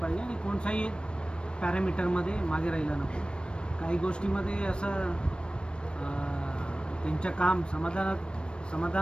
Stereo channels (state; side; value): late; right; 0.056 ms